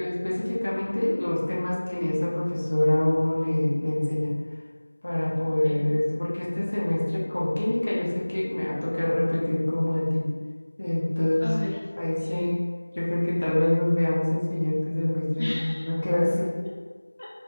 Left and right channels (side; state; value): both; inverted; correlation -1.00